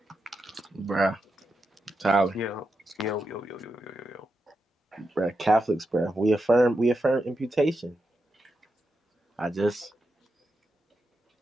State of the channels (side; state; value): both; normal; correlation 0.87